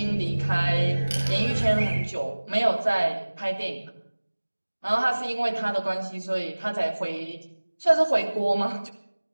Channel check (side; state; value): both; inverted; correlation -1.00